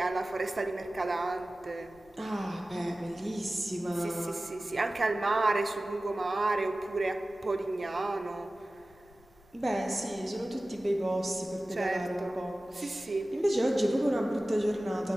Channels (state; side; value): noise; left; rumble, 29 dB below the sound